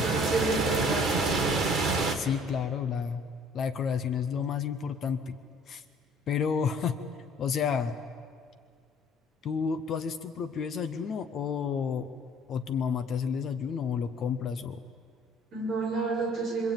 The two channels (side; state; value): both; normal; correlation 0.55